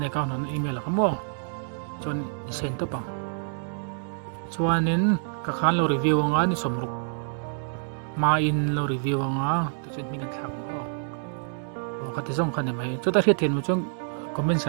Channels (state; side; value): silent; left; digital silence